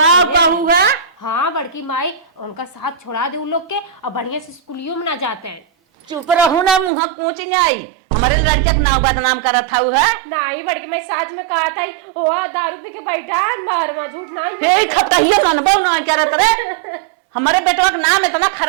कहू है? हाँ बड़की माई उनका साथ छोड़ा दे उन लोग के और बढ़िया से स्कूलियों में ना जाते हैं। चुप रहू ना, मुँह पूछ आई हमारे लड़के का नाम बदनाम करत था है ना ये बड़की मैं साथ में कहा था ओ दारू पी के बैठा है बाहर में झूठ ना हे खतहिया मनबो ना करत रे। हमारे बेटवा का नाम इतना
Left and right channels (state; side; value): drops out; left; at 6.9 s